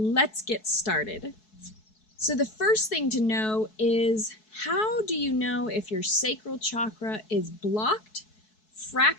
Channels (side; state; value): right; late; 4.7 ms